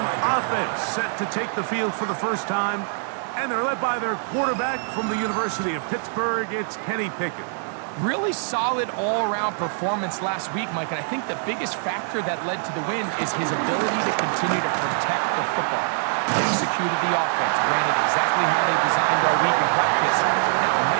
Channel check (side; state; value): left; silent; 63 dB below the other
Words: offense set to take the field for the first time, and they're led by their quarterback from the University of Pittsburgh. It's Kenny Pickett. Really solid all-around performance last week, Mike, and I think the biggest factor that led to the win is his ability to continue to protect the football. He executed the offense, ran it exactly how they designed our week in practice. Now, it